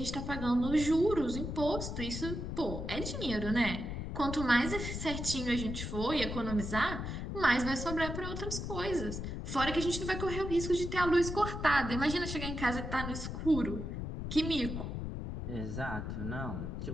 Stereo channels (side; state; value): left; noise; rumble, 5 dB below the sound